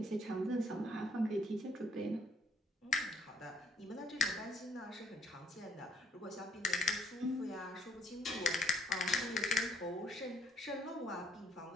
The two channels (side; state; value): both; normal; correlation 0.63